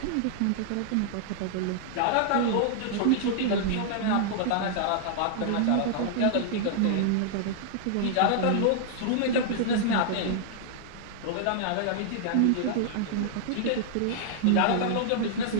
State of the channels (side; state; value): both; different; correlation -0.01